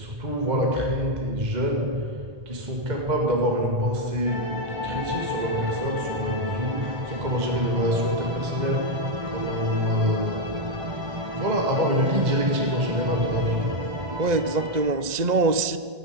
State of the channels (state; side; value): late; left; 1.9 ms